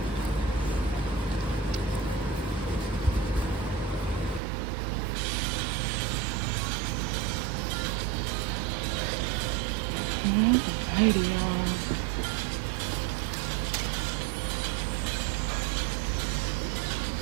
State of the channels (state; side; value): drops out; left; at 4.4 s